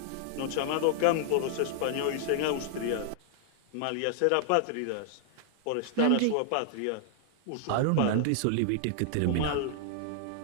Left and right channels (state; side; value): different; both; correlation -0.01